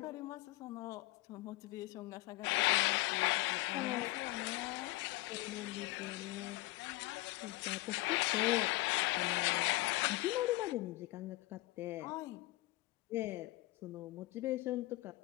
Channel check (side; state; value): right; quieter; 20.1 dB